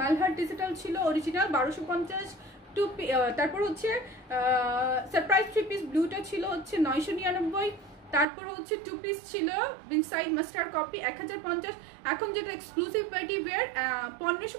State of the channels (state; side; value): drops out; left; at 8.2 s